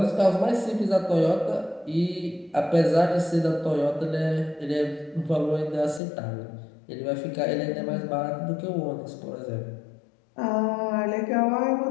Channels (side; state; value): right; drops out; at 6.0 s